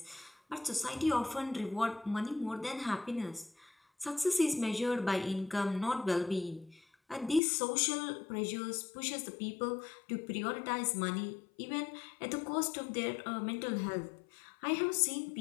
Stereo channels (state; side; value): drops out; right; at 7.4 s